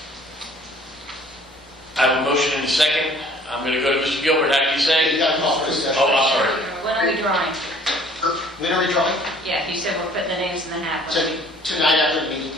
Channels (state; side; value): normal; both; correlation 0.55